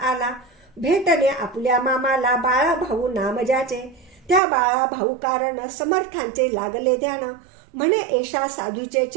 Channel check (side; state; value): left; drops out; at 4.4 s